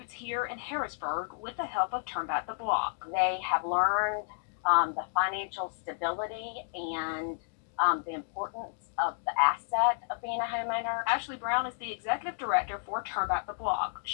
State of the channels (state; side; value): silent; right; digital silence